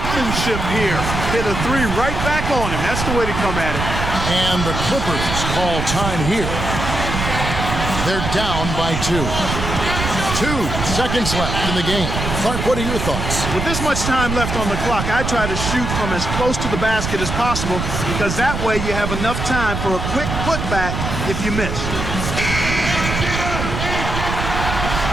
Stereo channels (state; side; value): noise; right; rumble, 3 dB below the sound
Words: here. Hit a three right back on him. That's the way to come at it. And the Clippers call time here. They're down by 2. 2 seconds left in the game. Clark, what are your thoughts? With this much time left on the clock, I try to shoot from as close to the basket as possible because that way you have enough time for a quick putback if you miss.